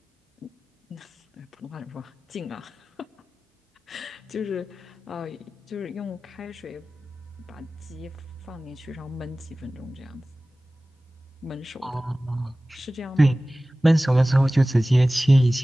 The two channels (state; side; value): normal; both; correlation 0.97